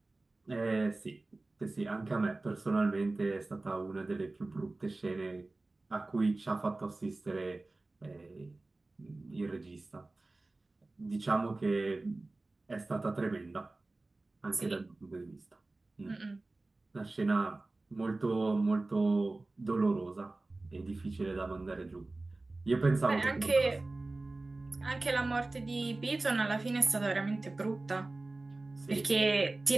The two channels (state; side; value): quieter; left; 3.1 dB